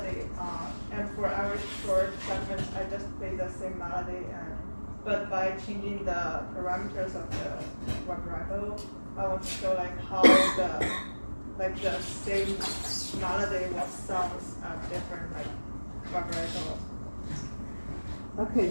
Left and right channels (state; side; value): inverted; both; correlation -1.00